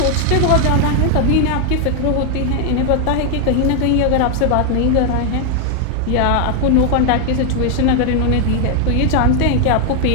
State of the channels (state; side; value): different; both; correlation 0.00